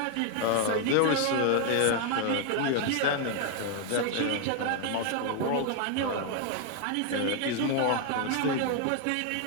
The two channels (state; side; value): different; both; correlation 0.00